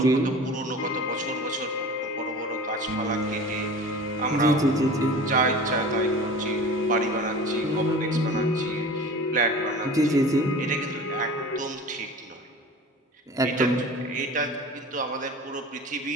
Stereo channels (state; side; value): normal; both; correlation 0.38